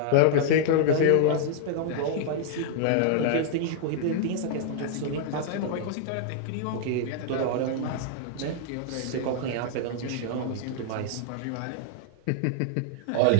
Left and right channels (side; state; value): both; different; correlation -0.01